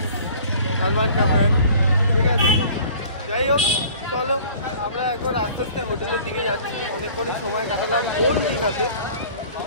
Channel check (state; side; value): inverted; both; correlation -0.49